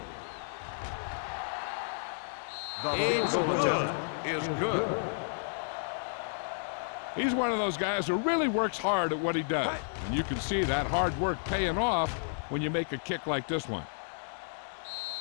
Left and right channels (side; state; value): right; silent; digital silence